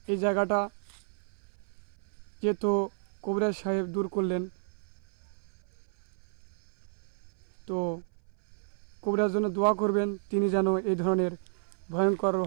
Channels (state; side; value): silent; left; 57 dB below the other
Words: এই জায়গাটা যেহেতু কবিরাজ সাহেব দূর করলেন, তো কবিরাজ জন্য দোয়া করবেন, তিনি যেন এই ধরনের ভয়ঙ্কর